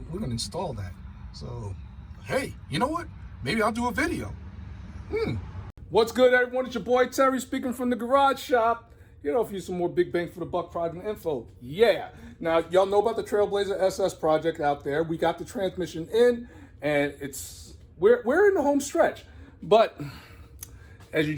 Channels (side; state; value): both; identical; correlation 1.00